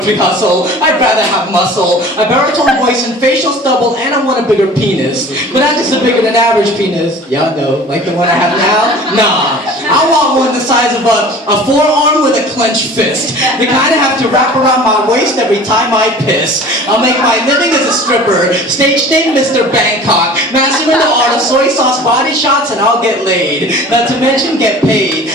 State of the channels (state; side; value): normal; both; correlation 0.43